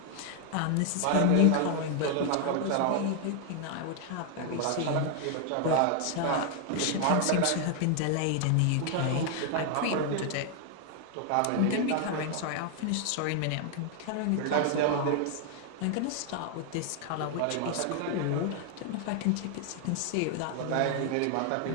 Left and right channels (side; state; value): both; different; correlation 0.00